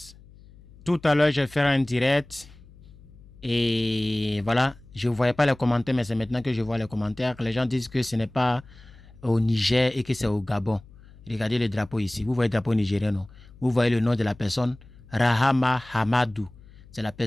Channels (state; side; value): noise; left; hum, 23 dB below the sound